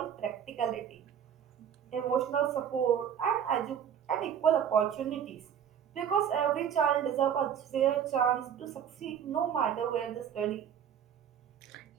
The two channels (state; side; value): quieter; left; 8.6 dB